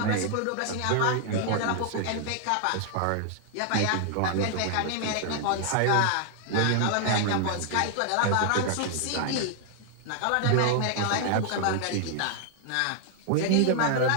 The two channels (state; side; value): different; both; correlation 0.00